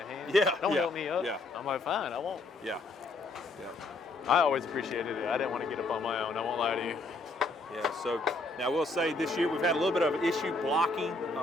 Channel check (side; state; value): right; quieter; 3.1 dB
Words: hand. Yeah, Don't yeah, help me up. yeah. I'm like, fine, I won't. Yeah. Yeah. I always appreciated it. I didn't want to get up on my own. I won't lie to you. Yeah, so now we'll say this year we've had a little bit of an issue blocking